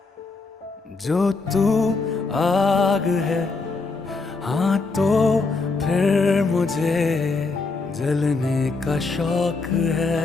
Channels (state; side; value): quieter; right; 3.9 dB